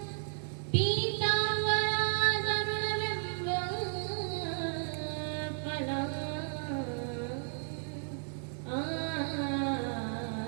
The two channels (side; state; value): left; silent; 55 dB below the other